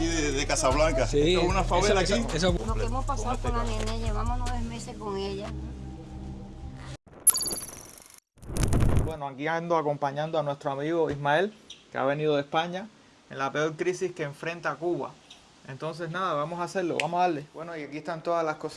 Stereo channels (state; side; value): identical; both; correlation 1.00